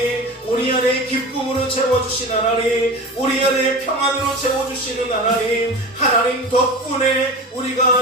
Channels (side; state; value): both; normal; correlation 0.31